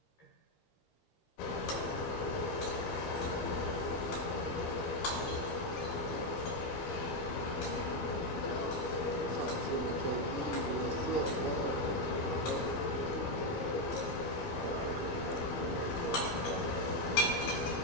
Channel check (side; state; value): right; late; 13 ms